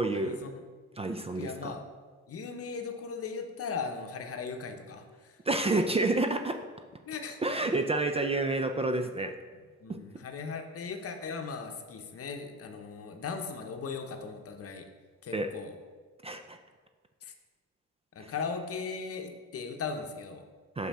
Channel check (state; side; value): normal; both; correlation 0.29